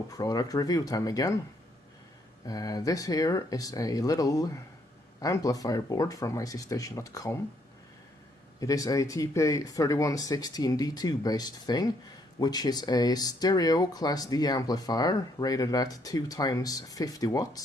product review time again. This here is a little amplifier board from ICStation.com. It is a TPA3116D2 based thing, which is a stereo Class D amplifier rated at 2 times 50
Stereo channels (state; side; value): normal; both; correlation 0.70